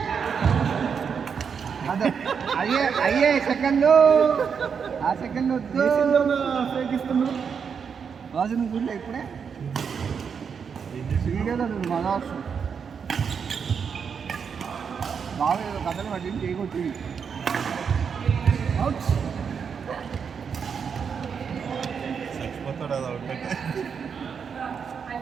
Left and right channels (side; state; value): left; quieter; 6.6 dB